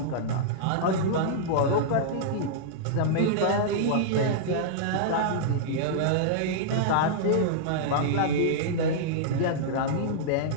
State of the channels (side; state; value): both; different; correlation -0.02